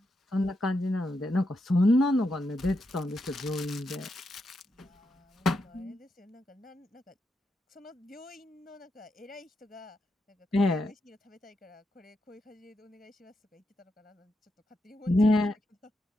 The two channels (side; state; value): both; normal; correlation 0.84